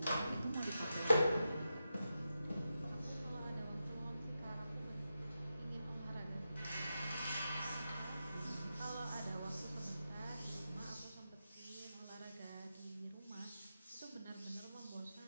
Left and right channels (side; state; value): both; inverted; correlation -0.89